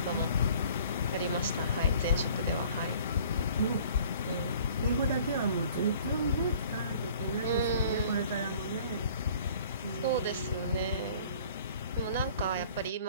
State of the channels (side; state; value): both; inverted; correlation -0.52